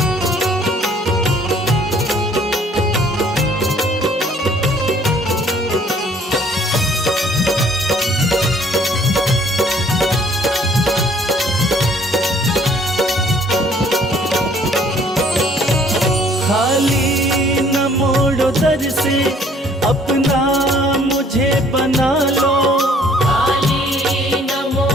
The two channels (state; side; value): normal; both; correlation 0.59